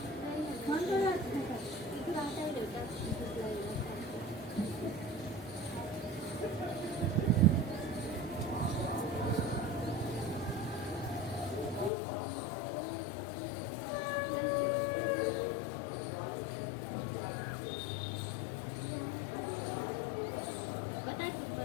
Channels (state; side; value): drops out; right; at 11.9 s